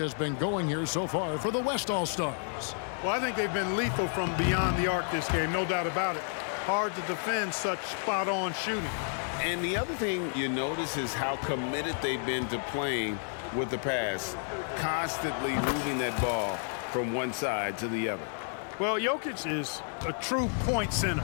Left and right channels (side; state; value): right; silent; 57 dB below the other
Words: been going here so far for the West All-Stars. Well, I think they've been lethal from beyond the arc this game, no doubt about it. Hard to defend such spot-on shooting. And the other thing you notice is how committed they've been to playing with the pass, constantly moving that ball from one side to the other. Well, Jokic is a true point center